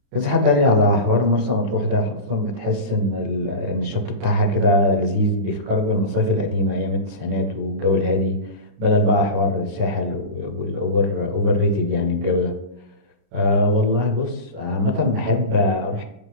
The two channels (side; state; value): left; late; 30 ms